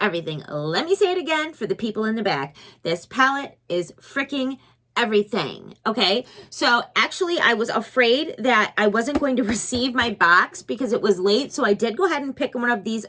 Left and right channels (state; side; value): identical; both; correlation 1.00